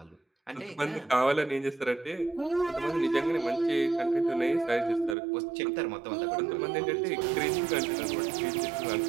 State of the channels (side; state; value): left; drops out; at 5.2 s